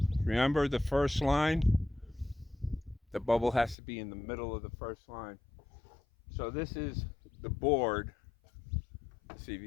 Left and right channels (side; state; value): right; drops out; at 3.8 s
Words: remember the first line? The bubble has to be in the middle of the first line. So this is the board. Let's see if